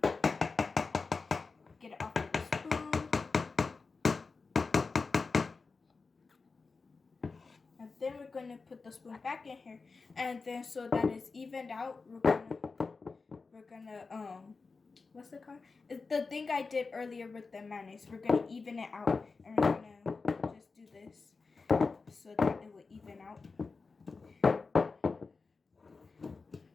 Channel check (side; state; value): right; quieter; 4.3 dB